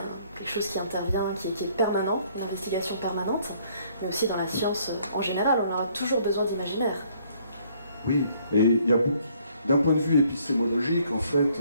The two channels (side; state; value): both; inverted; correlation -0.64